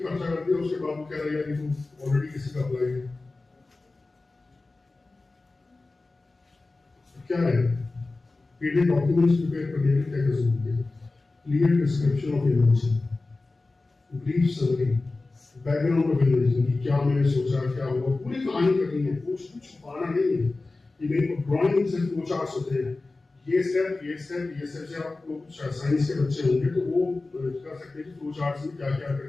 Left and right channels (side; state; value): right; quieter; 3.4 dB